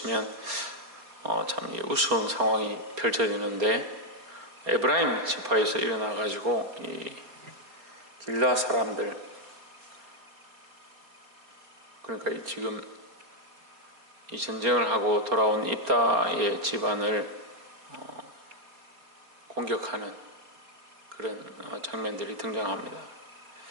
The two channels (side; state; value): left; late; 4.2 ms